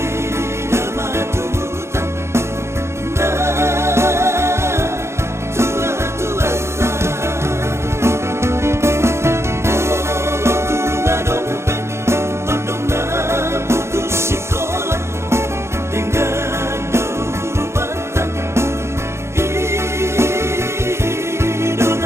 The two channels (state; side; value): late; left; 0.13 ms